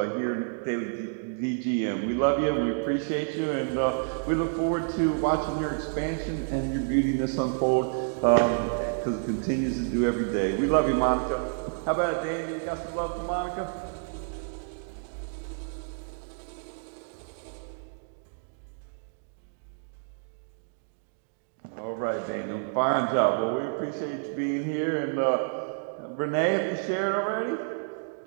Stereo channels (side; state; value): left; silent; digital silence